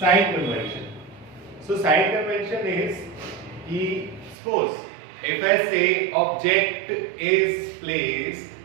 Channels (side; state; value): left; drops out; at 4.4 s